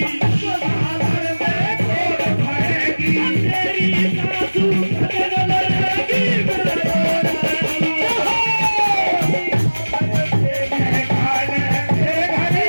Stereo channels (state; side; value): inverted; both; correlation -1.00